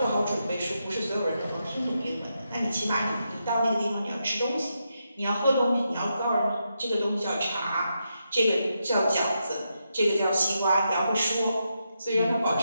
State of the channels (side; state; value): both; inverted; correlation -0.84